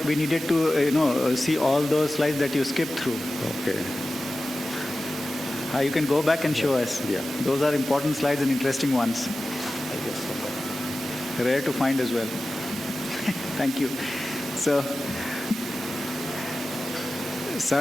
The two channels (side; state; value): both; normal; correlation 0.95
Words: we needed to, see all those slides that you skipped through. Okay. You can go back and show us. Yeah. Those are important slides and interesting ones. I guess so. Rare to find as well. Thank you. So, sir